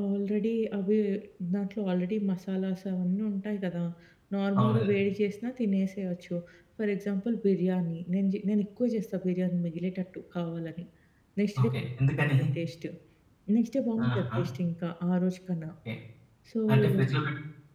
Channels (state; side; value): identical; both; correlation 1.00